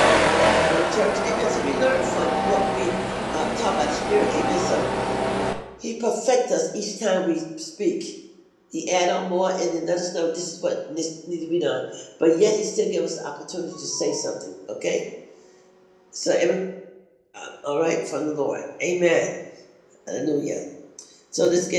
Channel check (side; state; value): both; identical; correlation 1.00